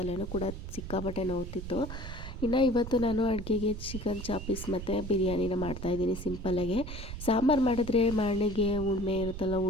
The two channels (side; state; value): right; noise; rumble, 8 dB below the sound